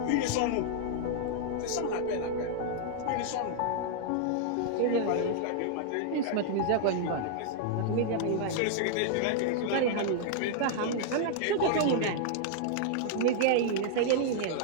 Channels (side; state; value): both; different; correlation -0.01